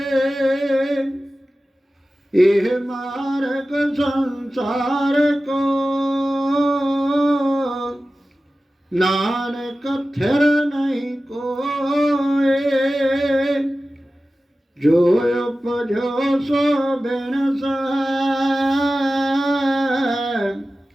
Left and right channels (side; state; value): both; normal; correlation 0.95